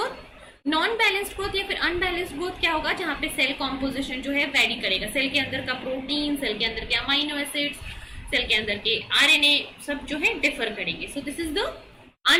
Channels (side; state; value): both; identical; correlation 1.00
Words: Non balanced growth या फिर अनबैलेंस्ड ग्रोथ क्या होगा? जहां पे सेल कॉम्पोजिशन जो है वेरी करेगा. सेल के अंदर का प्रोटीन, सेल के अंदर के अमाइनो एसिड्स, सेल के अंदर के आरएनए सब जो है डिफर करेंगे. So this is the